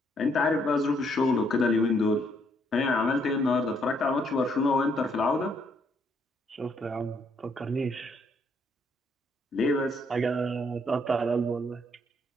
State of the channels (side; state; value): both; normal; correlation 0.71